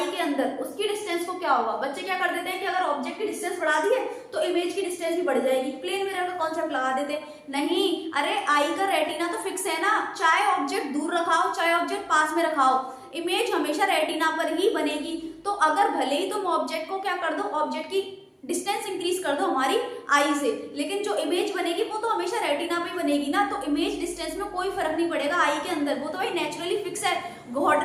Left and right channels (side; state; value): both; identical; correlation 1.00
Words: के अंदर, उसकी डिस्टेंस को क्या होगा। बच्चे क्या कर देते हैं कि अगर ऑब्जेक्ट की डिस्टेंस बढ़ा दी है तो इमेज की डिस्टेंस भी बढ़ जाएगी, प्लेन मिरर का कॉन्सेप्ट लगा देते। नहीं, अरे आई का रेटिना तो फिक्स है ना, चाहे ऑब्जेक्ट दूर रखाओ चाहे ऑब्जेक्ट पास में रखाओ, इमेज हमेशा रेटिना पर ही बनेगी। तो अगर भले ही तुम ऑब्जेक्ट को क्या कर दो, ऑब्जेक्ट की डिस्टेंस इंक्रीज कर दो हमारी आई से, लेकिन जो इमेज बनेगी वो तो हमेशा रेटिना पे बनेगी ना। तो इमेज डिस्टेंस में कोई फर्क नहीं पड़ेगा आई के अंदर, वो तो भाई नेचुरली फिक्स है, गॉड